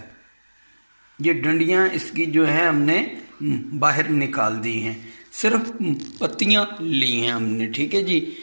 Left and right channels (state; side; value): inverted; both; correlation -1.00